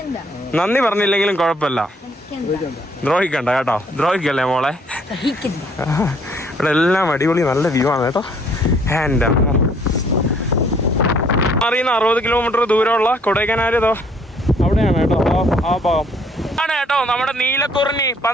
നന്ദി പറഞ്ഞില്ലെങ്കിലും കുഴപ്പമില്ല, ദ്രോഹിക്കണ്ട കേട്ടോ. ദ്രോഹിക്കല്ലേ മോളെ. ഇവിടെ എല്ലാം അടിപൊളി നല്ല വ്യൂ ആണ് കേട്ടോ. എൻ്റെ അമ്മ, അറിയുന്ന 60 കിലോമീറ്റർ ദൂരമുള്ള കൊടൈക്കനാലോ അവിടെയാണ് കേട്ടോ. ആ ഭാഗം ആണ് കേട്ടോ നമ്മുടെ നീലക്കുറിഞ്ഞി.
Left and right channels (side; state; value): both; normal; correlation 0.63